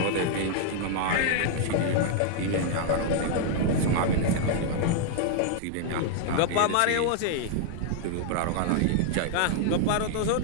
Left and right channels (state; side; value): different; both; correlation 0.00